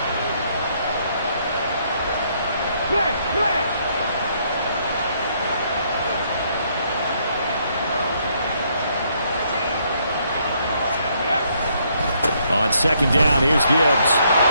On 2nd down, here's Gibbs.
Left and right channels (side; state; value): both; inverted; correlation -0.70